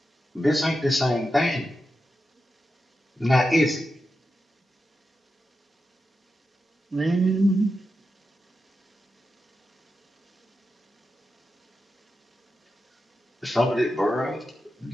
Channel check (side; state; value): both; normal; correlation 0.89